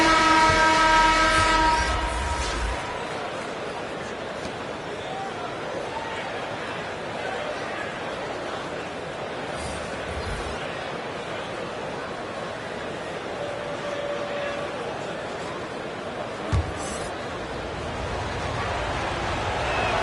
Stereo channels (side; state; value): both; identical; correlation 1.00